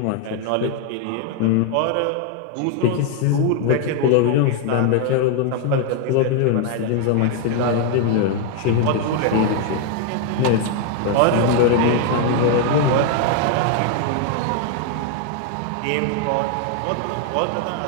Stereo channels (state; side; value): different; both; correlation 0.00